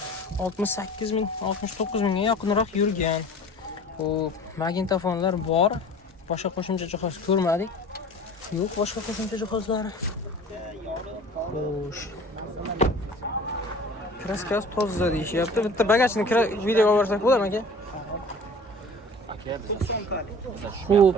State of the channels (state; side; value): normal; both; correlation 0.43